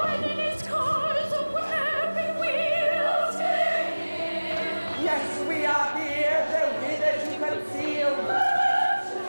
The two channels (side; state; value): both; inverted; correlation -1.00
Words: in his cause of weapon wields. Yes, we are here, the withered to conceal.